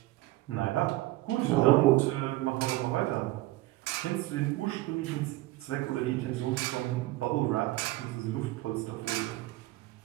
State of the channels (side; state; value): left; quieter; 18.5 dB